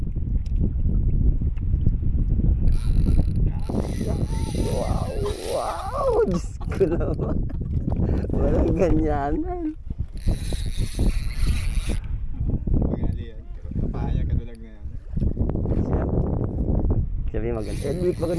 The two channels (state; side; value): identical; both; correlation 1.00